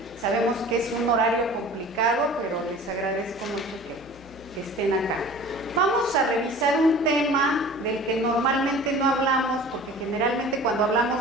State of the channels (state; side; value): normal; both; correlation 0.43